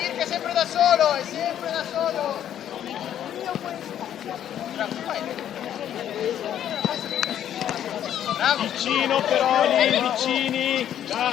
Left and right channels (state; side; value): quieter; right; 10.5 dB